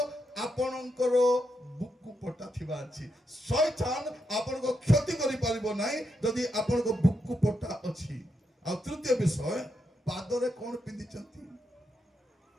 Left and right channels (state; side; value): normal; both; correlation 0.82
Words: ଆପଣଙ୍କର ବୁକୁ ପଟା ଥିବା ଅଛି। ଶୈତାନ ଆପଣଙ୍କ କ୍ଷତି କରିପାରିବ ନାହିଁ ଯଦି ଆପଣଙ୍କ ବୁକୁ ପଟା ଅଛି। ଆଉ ତୃତୀୟ ବିଷୟ, ପାଦରେ କଣ ପିନ୍ଧିଛନ୍ତି?